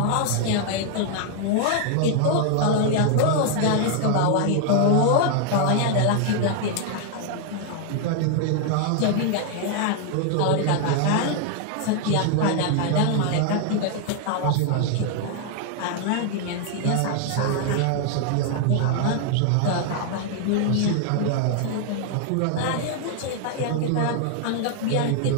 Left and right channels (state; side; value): different; both; correlation 0.00